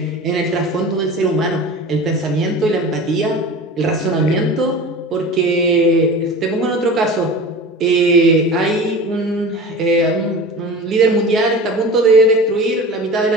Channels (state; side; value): normal; both; correlation 0.35